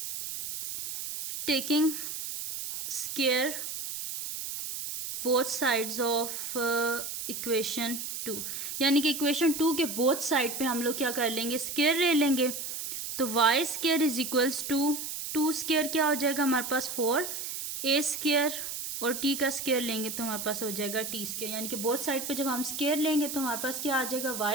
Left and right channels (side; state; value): right; noise; hiss, 6 dB below the sound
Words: taking square both sides of equation 2, यानी कि इक्वेशन 2 के बोथ साइड पे हम लोग क्या कर लेंगे स्क्वायर ले लेंगे। तो y square is equals to two square क्या हो जाएगा हमारे पास 4, ए स्केयर और टी का स्केयर लेंगे तो हमारे पास हो जाएगा टी स्केयर, यानी कि बोथ साइड पे जब हम स्केयर लेंगे तो हमारे पास क्या आ जाएगा